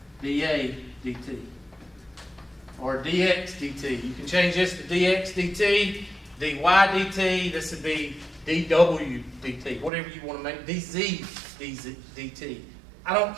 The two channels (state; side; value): drops out; left; at 9.9 s